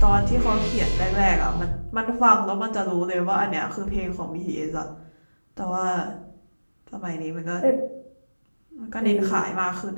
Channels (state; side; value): inverted; both; correlation -1.00